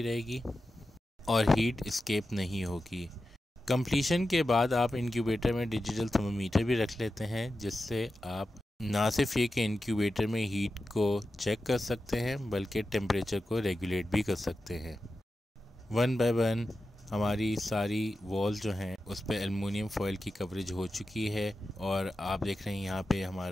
रहेगी और हीट एस्केप नहीं होगी। कंप्लीशन के बाद आप इंक्यूबेटर में डिजिटल थर्मोमीटर भी रख लेते हैं, जिससे आप ना सिर्फ ये कि इंक्यूबेटर में हीट को चेक कर सकते हैं बल्कि टेम्परेचर को रेगुलेट भी कर सकते हैं। 1 बाय 1 हमारी सारी वॉल जो हैं उस पर एल्युमिनियम फॉयल की कवरेज हो चुकी है और आप देख रहे हैं यहाँ पे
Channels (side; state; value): both; normal; correlation 0.92